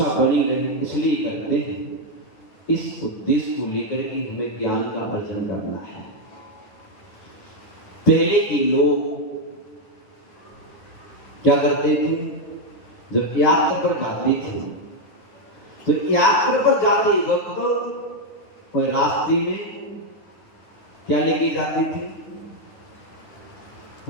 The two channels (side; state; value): right; late; 9.6 ms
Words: बनी रहे इसलिए करते हैं। इस उद्देश्य को लेकर के हमें ज्ञान का अर्जन करना है। पहले के लोग क्या करते थे, जब यात्रा पर जाते थे तो यात्रा पर जाते वक्त वह रास्ते में क्या लेके जाते थे,